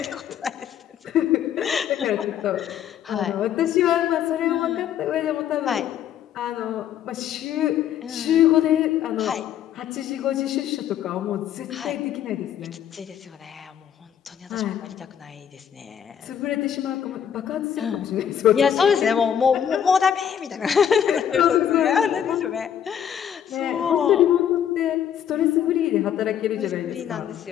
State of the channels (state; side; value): quieter; right; 9.3 dB